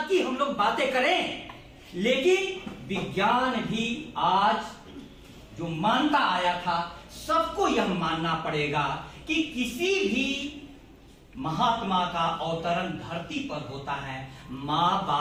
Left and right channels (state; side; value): identical; both; correlation 1.00